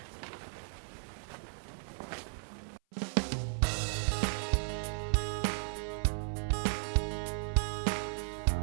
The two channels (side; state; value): left; silent; 54 dB below the other